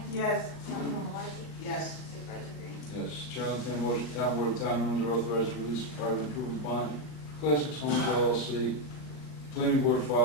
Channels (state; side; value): late; right; 39 ms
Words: Yes. Councilwoman Malarkey? Yes. Supervisor Green? Yes. Chair will entertain a motion, town board of town of Windsor authorized to release a private improvement bond, Classics Homes LLC, Planning Board